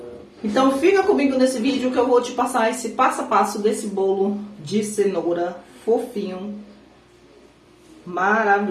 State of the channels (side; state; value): both; identical; correlation 1.00